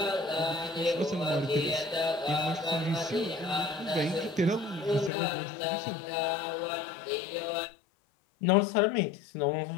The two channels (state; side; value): drops out; right; at 5.1 s